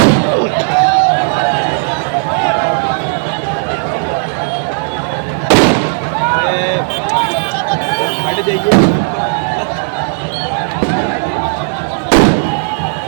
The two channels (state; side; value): silent; left; 57 dB below the other